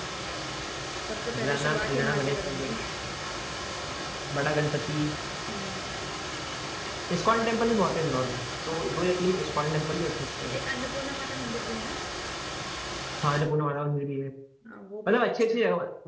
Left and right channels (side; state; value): both; identical; correlation 1.00